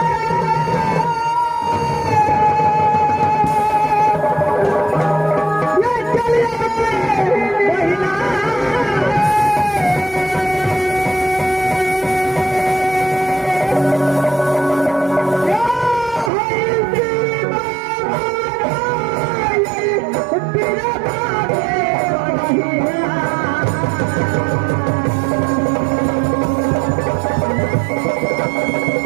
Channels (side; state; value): left; drops out; at 16.3 s